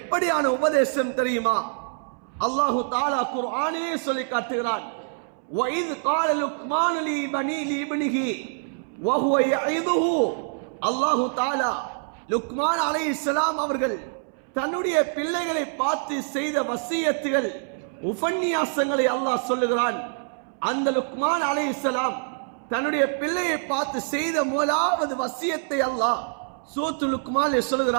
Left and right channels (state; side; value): silent; left; 62 dB below the other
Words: உபதேசம் தெரியுமா? அல்லாஹு தஆலா குர்ஆனிலே சொல்லி காட்டுகிறான், وَإِذْ قَالَ لُقْمَانُ لِابْنِهِ وَهُوَ يَعِظُهُ. அல்லாஹு தஆலா லுக்மான் அலைஹிஸ்ஸலாம் அவர்கள் தன்னுடைய பிள்ளைகளை பார்த்து செய்த வசியத்துகள், உபன்யாசங்களை அல்லாஹ் சொல்லுகிறான். அந்த லுக்மான் அலைஹிஸ்ஸலாம் தன்னுடைய பிள்ளையை பார்த்து செய்த முதலாவது வசியத்தை அல்லாஹ் சூரத்துல் லுக்மானிலே